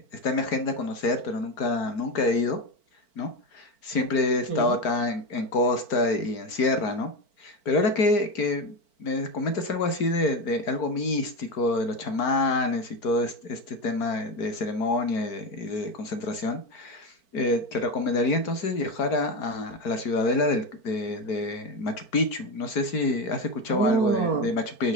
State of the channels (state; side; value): late; right; 4.5 ms